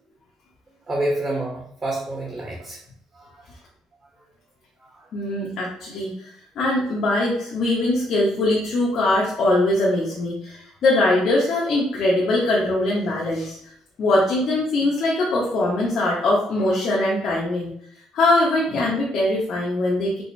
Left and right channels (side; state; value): both; normal; correlation 0.72